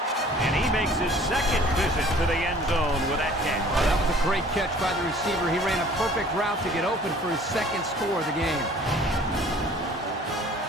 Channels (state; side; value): normal; both; correlation 0.51